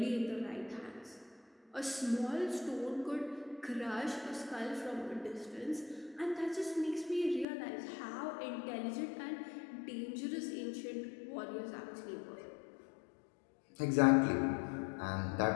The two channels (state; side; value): drops out; right; at 7.5 s